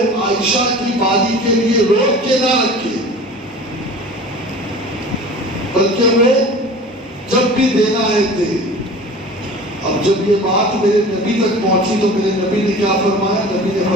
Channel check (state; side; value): normal; both; correlation 0.40